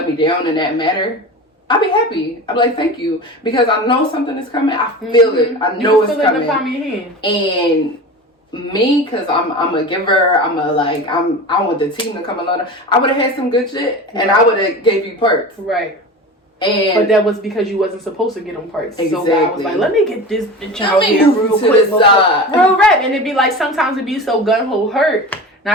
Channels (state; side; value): normal; both; correlation 0.31